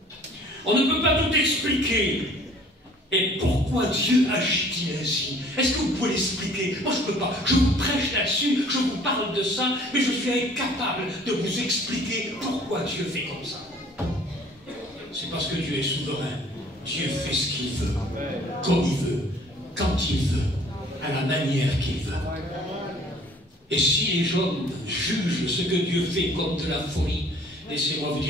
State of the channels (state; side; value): normal; both; correlation 0.53